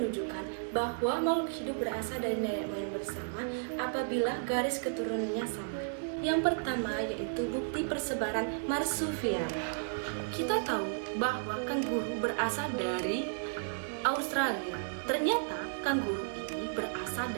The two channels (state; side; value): silent; left; digital silence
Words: bahwa makhluk hidup berasal dari nenek moyang bersama apabila garis keturunannya sama. Yang pertama yaitu bukti persebaran marsupial. Kita tahu bahwa kanguru berasal dari Australia. Ternyata kanguru ini berasal